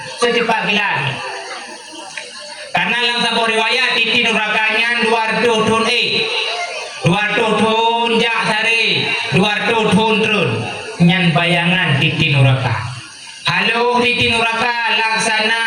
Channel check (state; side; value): identical; both; correlation 1.00